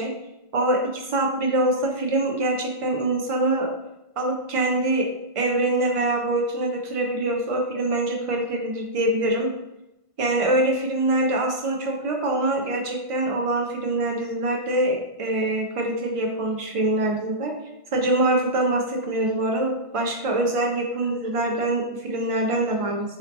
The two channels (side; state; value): left; late; 1.5 ms